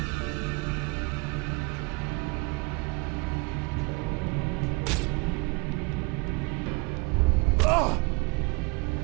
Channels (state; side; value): quieter; left; 27.9 dB